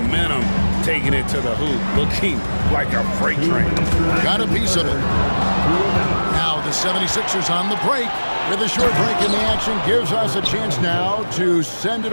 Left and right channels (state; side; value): inverted; both; correlation -1.00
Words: taking it to the hoop, looking like a freight train. Got a piece of it. Now the 76ers on the break. With a short break in the action gives us a chance now to send it